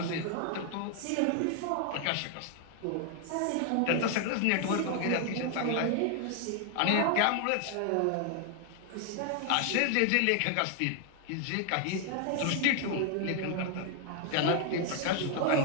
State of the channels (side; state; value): both; different; correlation 0.00